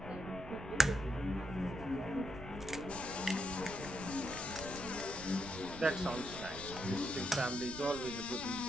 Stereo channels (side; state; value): right; noise; rumble, 13 dB below the sound